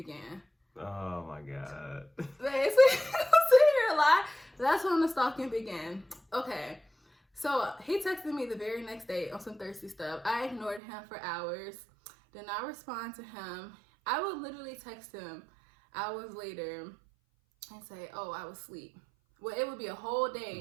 Oh my God. That's when the stalking began. Okay, so he texted me the very next day on some thirsty stuff. I ignored him for hours, did not respond to him. I would literally text him hours later and say, oh, I was asleep. Well, it would be a whole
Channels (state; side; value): drops out; left; at 10.8 s